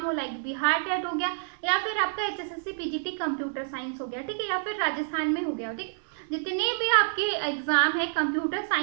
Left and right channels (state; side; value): silent; left; 59 dB below the other